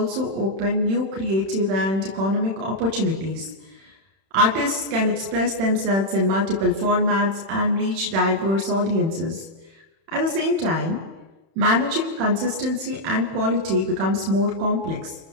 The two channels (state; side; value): late; left; 31 ms